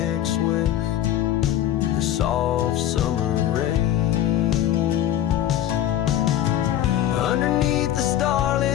with the soft summer rains. Underneath the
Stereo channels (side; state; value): right; quieter; 11.9 dB